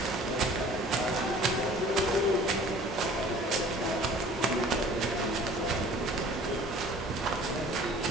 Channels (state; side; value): normal; both; correlation 0.49